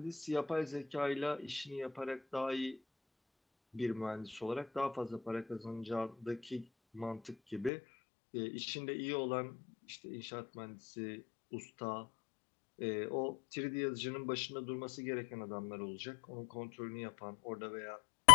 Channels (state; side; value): drops out; right; at 7.7 s